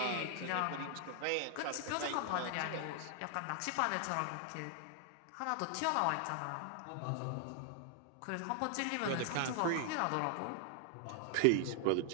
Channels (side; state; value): both; different; correlation 0.00